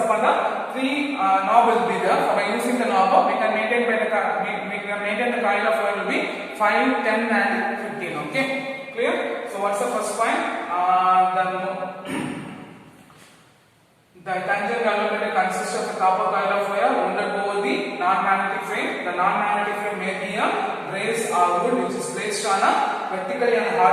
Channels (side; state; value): both; identical; correlation 1.00